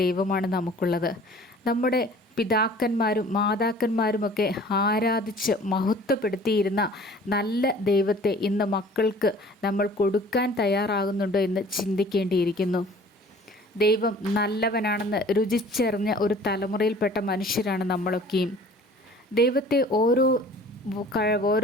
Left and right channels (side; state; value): both; normal; correlation 0.49